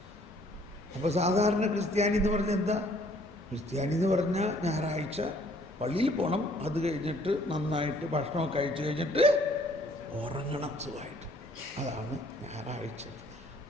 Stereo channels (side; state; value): both; normal; correlation 0.60